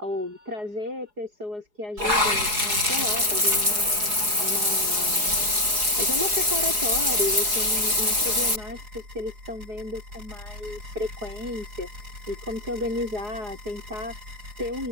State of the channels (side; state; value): left; late; 4.8 ms